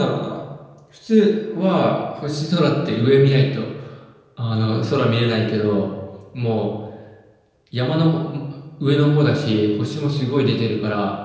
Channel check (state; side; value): identical; both; correlation 1.00